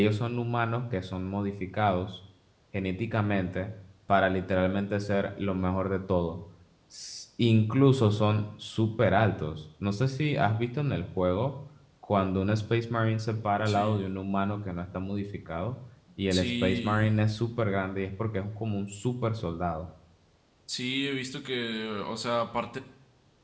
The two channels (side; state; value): both; identical; correlation 1.00